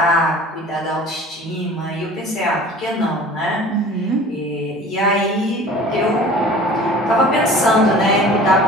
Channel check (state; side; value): normal; both; correlation 0.44